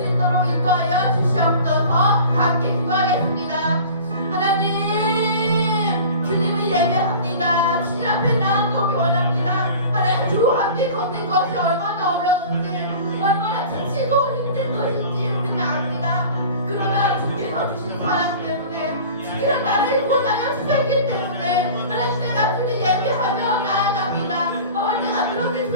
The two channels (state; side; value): inverted; both; correlation -0.40